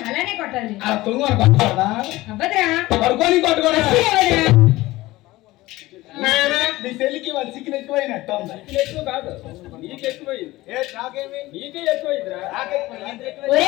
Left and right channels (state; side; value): quieter; right; 18.5 dB